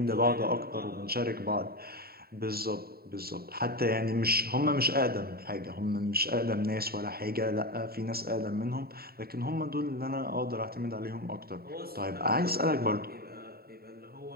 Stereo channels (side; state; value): left; late; 0.45 ms